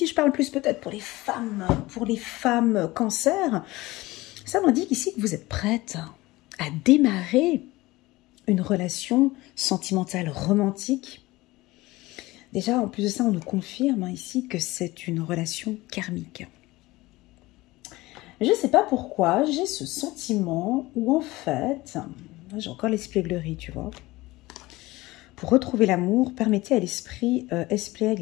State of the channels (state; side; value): quieter; right; 19.8 dB